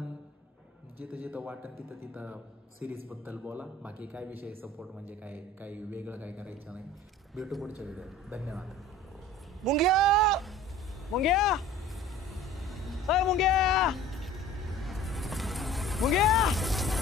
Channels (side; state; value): both; normal; correlation 0.44